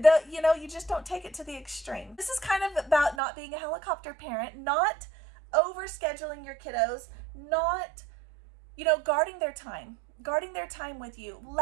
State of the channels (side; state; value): left; drops out; at 3.2 s